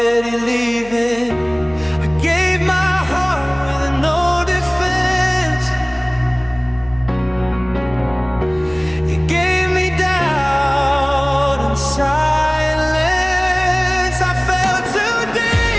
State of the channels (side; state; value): left; noise; hum, 20 dB below the sound